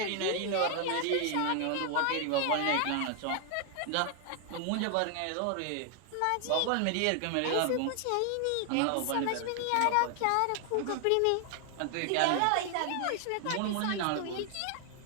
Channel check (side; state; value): both; different; correlation 0.00